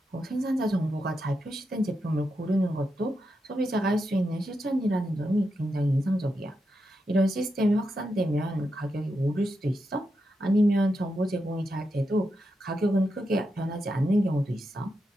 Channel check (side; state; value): both; normal; correlation 0.86